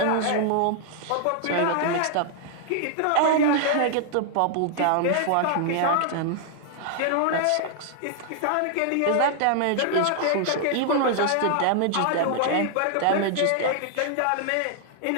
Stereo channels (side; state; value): both; different; correlation 0.00